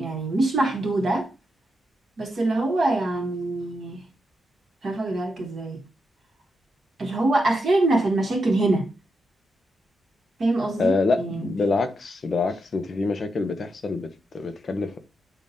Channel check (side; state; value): both; normal; correlation 0.84